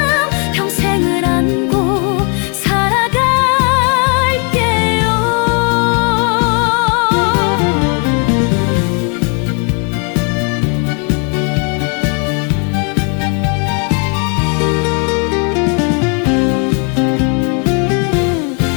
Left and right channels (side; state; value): right; quieter; 37.0 dB